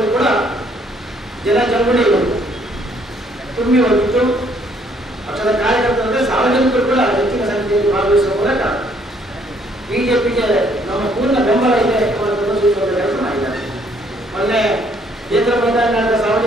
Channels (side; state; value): both; normal; correlation 0.65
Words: ಕೂಡ ಜನಜಂಗುಳಿ ತುಂಬಿ ಹೋಗಿತ್ತು. ಪಕ್ಷದ ಕಾರ್ಯಕರ್ತರಂದ್ರೆ ಸಾರ್ವಜನಿಕರು ಕೂಡ ಹೆಚ್ಚಿನ ಸಂಖ್ಯೆಯಲ್ಲಿ ಭಾಗವಹಿಸುವ ಮೂಲಕ ಬಿಜೆಪಿಗೆ ನಮ್ಮ ಪೂರ್ಣ ಬೆಂಬಲ ಇದೆ ಪ್ರದರ್ಶಿಸುವ ಕೆಲಸ ಮಾಡಿದ್ದಾರೆ. ಮೊನ್ನೆ ಕೇಂದ್ರ ಮೈದಾನ ನಡೆದ